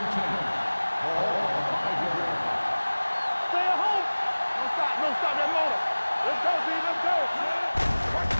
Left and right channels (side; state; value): both; inverted; correlation -1.00